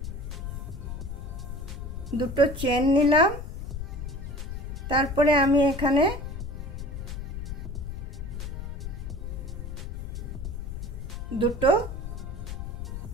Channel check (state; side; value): noise; left; rumble, 6 dB below the sound